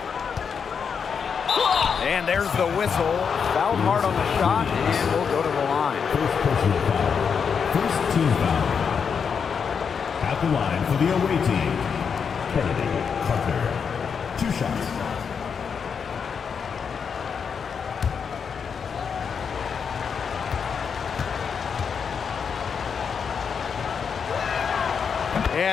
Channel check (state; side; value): quieter; right; 6.5 dB